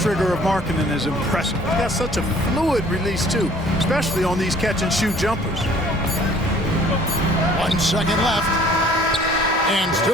of Markkanen is impressive. He's got such a fluid release, too, especially on these catch-and-shoot jumpers. 1 second left. And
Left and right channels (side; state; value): both; normal; correlation 0.55